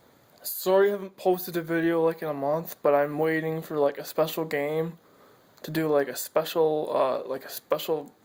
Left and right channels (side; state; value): both; identical; correlation 1.00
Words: Sorry I haven't posted a video like in a month, but I'm waiting for like a special game to do like a special